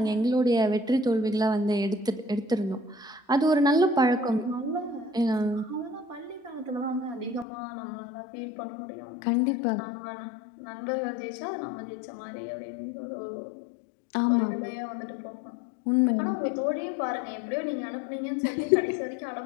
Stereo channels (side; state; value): right; drops out; at 7.5 s